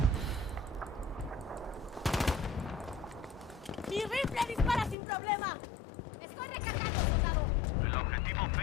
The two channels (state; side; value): drops out; right; at 5.0 s